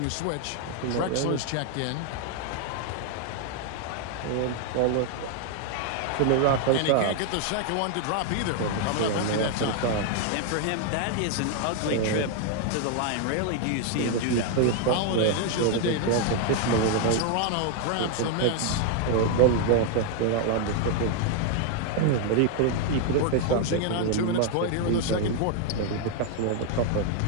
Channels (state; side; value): different; both; correlation 0.00